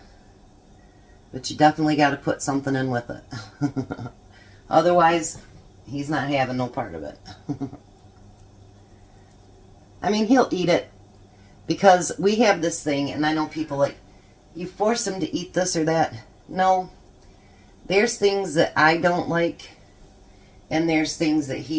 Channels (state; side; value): identical; both; correlation 1.00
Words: But you definitely got to put something in with it. Otherwise, he's not having no part of it. I mean, he'll eat it because we have this thing, and I know people like, you force him to eat this or that. No, there's things that I don't like, and there's things that